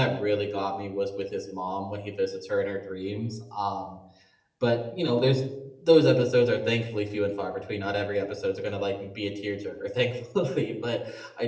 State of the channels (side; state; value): both; identical; correlation 1.00